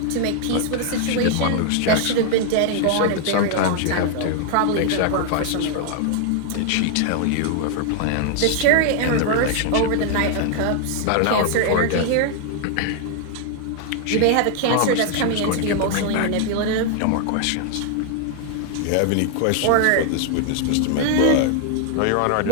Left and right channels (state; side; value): different; both; correlation 0.00